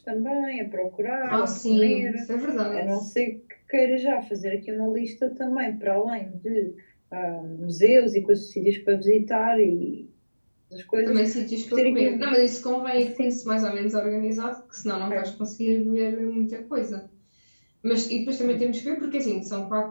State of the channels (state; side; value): inverted; both; correlation -1.00